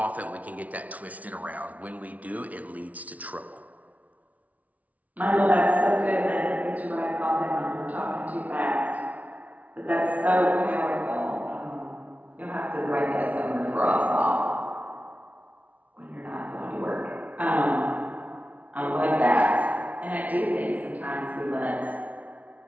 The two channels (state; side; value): late; left; 0.070 ms